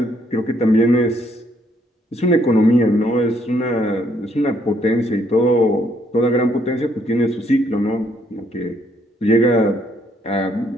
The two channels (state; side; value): normal; both; correlation 0.69